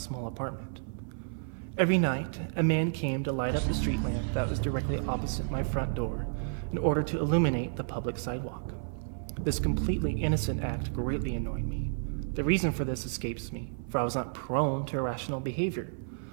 apartment. Every night, a man came to light up the street lamp that was directly opposite my front door in order to illuminate the public sidewalk. This completely innocent act greatly annoyed me. The reason for this escapes me, for I was not prone to irrational behavior,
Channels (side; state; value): left; silent; 57 dB below the other